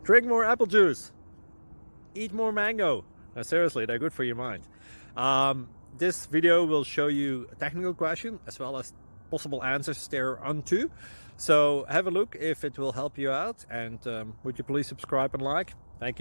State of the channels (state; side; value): inverted; both; correlation -1.00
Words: Drink more apple juice. Eat more mango. No, seriously, they're good for your mind. This video will show you a technical question as well as possible answers thereunto. So have a look if it will help you out, and would you please subscribe and like? Thank